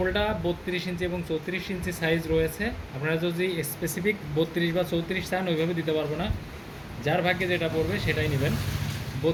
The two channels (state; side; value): identical; both; correlation 1.00